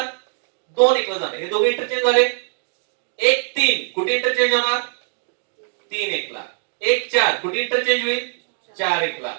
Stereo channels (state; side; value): silent; left; digital silence